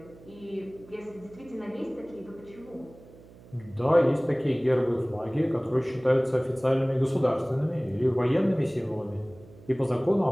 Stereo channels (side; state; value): right; noise; hum, 22 dB below the sound